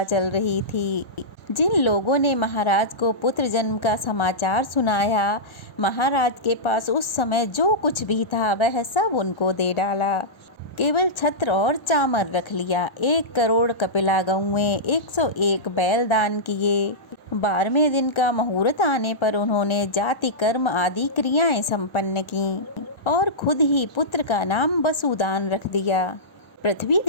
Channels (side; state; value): right; late; 1.3 ms